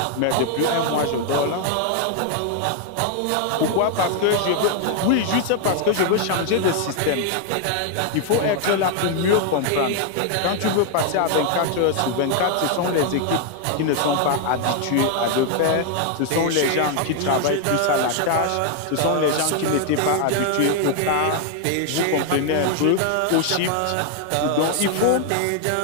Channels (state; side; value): different; both; correlation 0.00